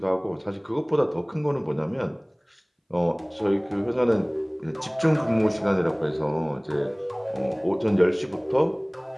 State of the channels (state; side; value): identical; both; correlation 1.00